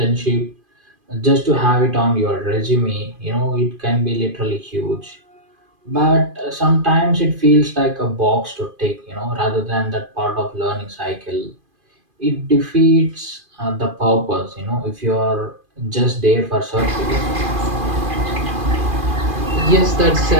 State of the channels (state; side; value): late; left; 2.5 ms